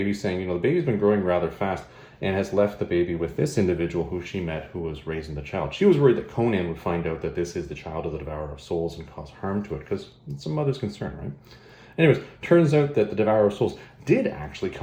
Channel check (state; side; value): identical; both; correlation 1.00